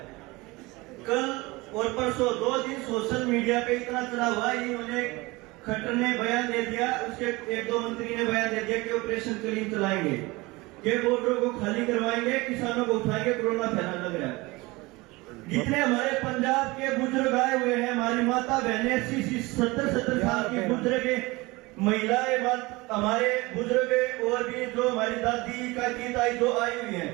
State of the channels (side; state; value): left; quieter; 22.7 dB